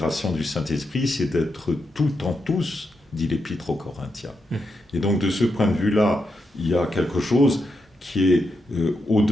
du Saint-Esprit, c'est d'être tout en tous, dit l'Épître aux Corinthiens. Et donc, de ce point de vue-là, il y a quelque chose qui est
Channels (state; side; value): normal; both; correlation 0.84